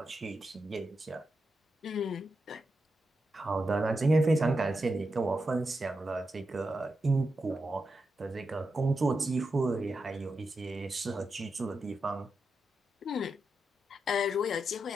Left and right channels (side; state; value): both; normal; correlation 0.87